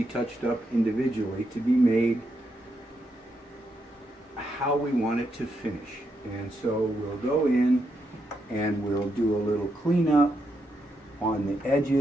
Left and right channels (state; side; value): normal; both; correlation 0.82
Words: touched up individually to be made how we want it to finish. And so we'll go in and we'll do a little cleanup on the